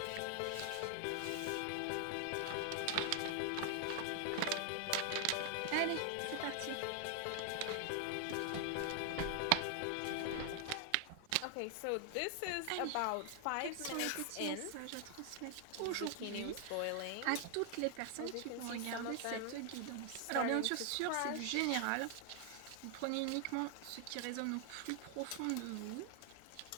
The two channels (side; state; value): both; different; correlation 0.00